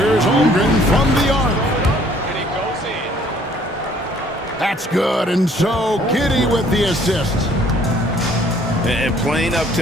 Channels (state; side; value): normal; both; correlation 0.59